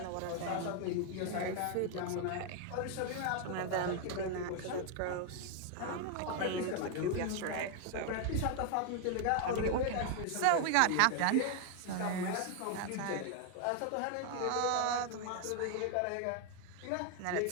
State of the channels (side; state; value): both; different; correlation 0.00